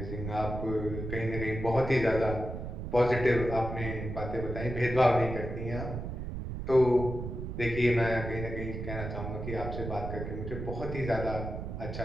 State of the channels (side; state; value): right; noise; rumble, 6 dB below the sound